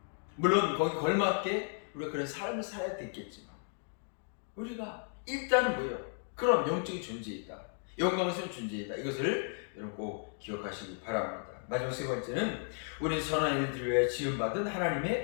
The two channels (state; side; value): silent; right; 55 dB below the other